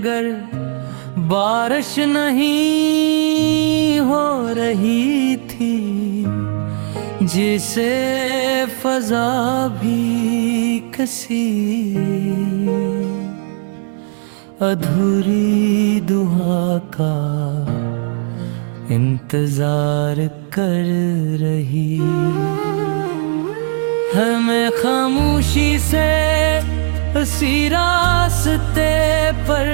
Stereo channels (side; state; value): left; silent; digital silence